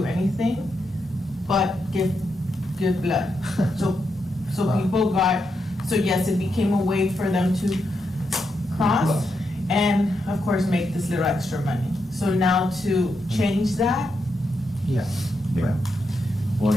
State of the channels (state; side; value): normal; both; correlation 0.83